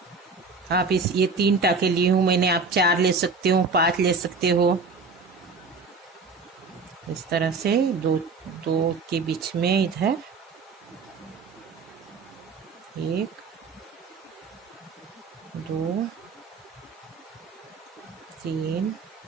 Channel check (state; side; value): quieter; left; 4.4 dB